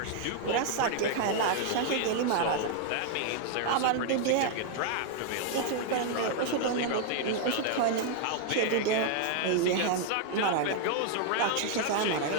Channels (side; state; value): both; different; correlation 0.00